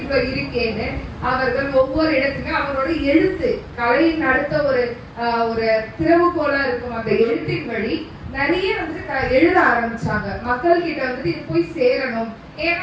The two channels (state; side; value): identical; both; correlation 1.00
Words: இருக்கேன்னு அவர்கள் ஒவ்வொரு இடத்துலயும் அவரோட எழுத்து கலையின் அடுத்த ஒரு திறவுகோலா இருக்கும் அந்த எழுத்தின் வழி நிறைய வந்துட்டு எழுத ஆரம்பிச்சாங்க. மக்கள் கிட்ட வந்துட்டு இது போய் சேரணும். ஏன்னா